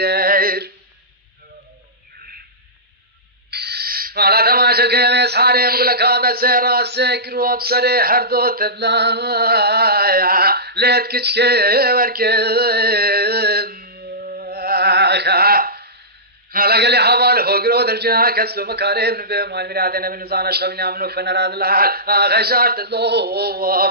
على تماشى كيف صاري مقول لك هذا سير سكر وبصري حردو تبلا ليت كشكي وركن هلا قال لي حوال هوجرو درجنا كسلو مكارم نبي مال مرادنا من زانا شغلنا منو فنراد الحال غشارت اللو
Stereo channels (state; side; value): normal; both; correlation -0.19